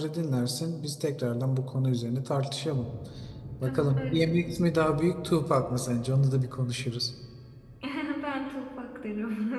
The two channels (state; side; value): identical; both; correlation 1.00